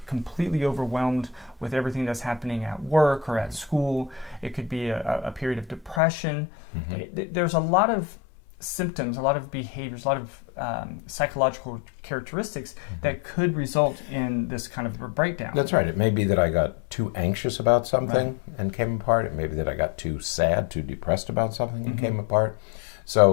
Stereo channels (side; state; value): right; drops out; at 6.0 s